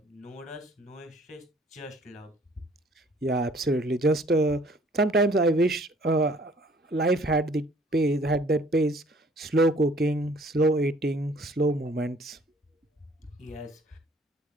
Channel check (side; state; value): both; normal; correlation 0.57